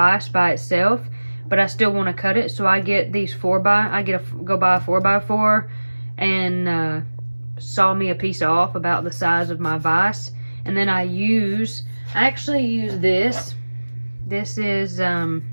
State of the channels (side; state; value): both; inverted; correlation -1.00